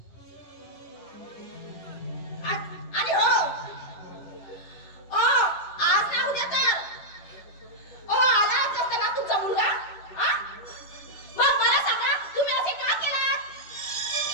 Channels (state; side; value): late; right; 10 ms